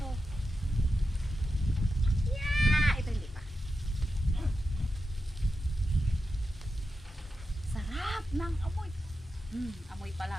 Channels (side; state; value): both; normal; correlation 0.89